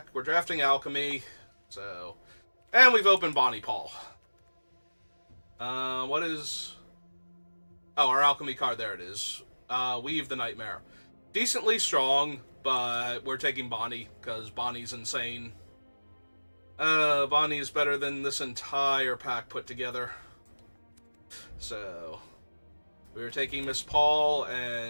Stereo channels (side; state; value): both; inverted; correlation -1.00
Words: We're drafting Alchemy, so... And we've opened Bonnie Paul. What is... Oh, our Alchemy card, there it is. Weave the Nightmare. Decently strong, but we're taking Bonnie, because Bonnie's insane. Bonnie is better than this entire pack put together. So, we are taking Miss Paul,